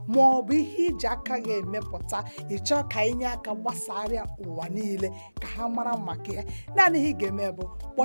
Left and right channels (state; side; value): inverted; both; correlation -1.00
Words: ma ọ bụ ihe iji aka gị emepụta ịchọ ka inye aka gbasara ụwa niile ka ha mara maka ya naanị ihe ị ga-eme bụ